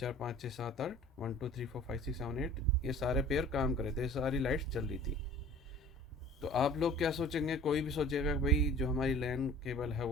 5 6 7 8, 1 2 3 4 5 6 7 8, ये सारे पेयर काम कर रहे थे, सारी लाइट्स जल रही थी। तो आप लोग क्या सोचेंगे, कोई भी सोचेगा कि भाई जो हमारी लैन केबल है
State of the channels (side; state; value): both; normal; correlation 0.47